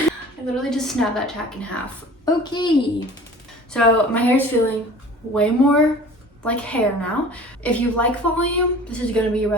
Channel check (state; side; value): normal; both; correlation 0.44